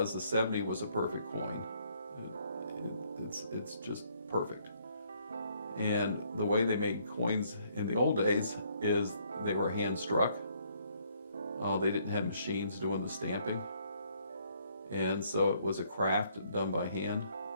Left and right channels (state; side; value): inverted; both; correlation -0.67